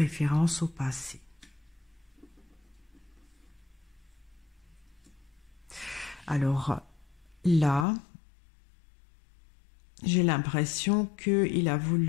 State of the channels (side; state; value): right; drops out; at 7.9 s